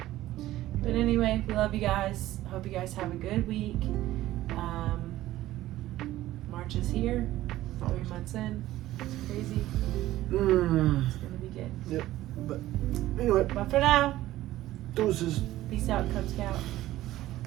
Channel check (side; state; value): left; quieter; 15.1 dB